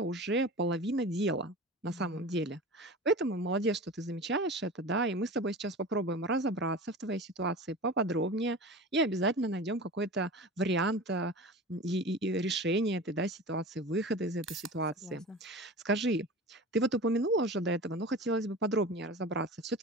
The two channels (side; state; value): both; normal; correlation 0.33